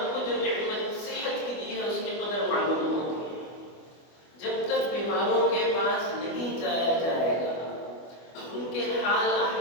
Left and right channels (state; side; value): late; right; 24 ms